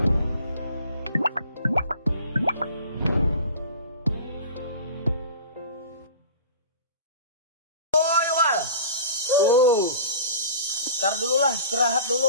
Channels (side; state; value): both; inverted; correlation -0.42